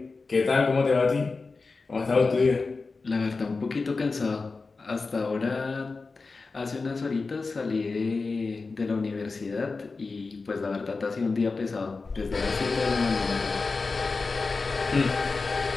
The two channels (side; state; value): right; quieter; 4.1 dB